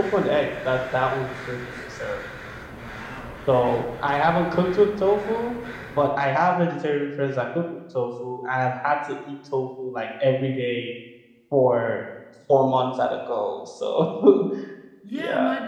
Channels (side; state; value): both; identical; correlation 1.00